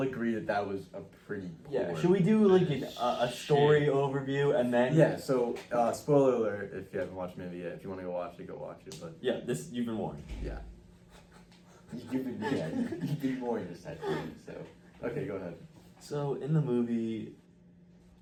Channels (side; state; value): both; identical; correlation 1.00